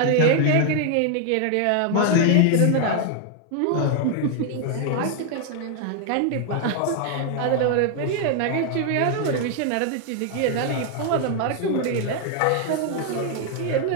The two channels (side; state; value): both; different; correlation 0.00